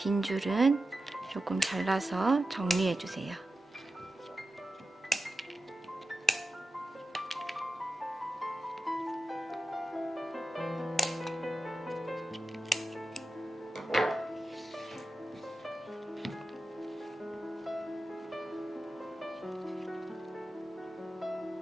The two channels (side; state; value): both; normal; correlation 0.92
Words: 줄은 조금 잘라서 정리해 주세요.